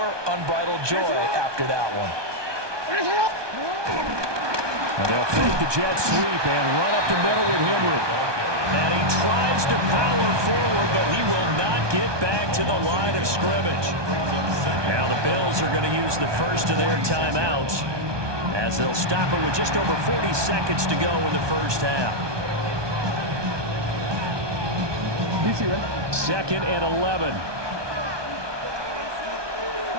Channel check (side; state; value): left; late; 1.2 ms